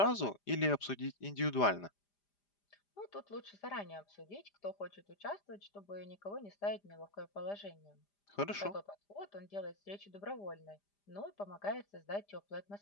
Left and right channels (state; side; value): late; right; 5.0 ms